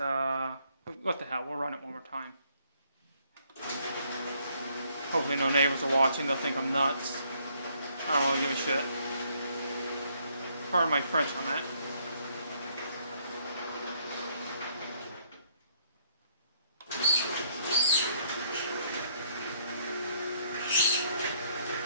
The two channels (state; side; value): inverted; both; correlation -0.68